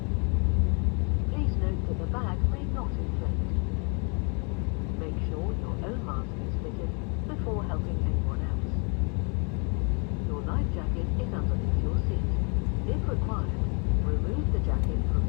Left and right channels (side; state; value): right; quieter; 35.9 dB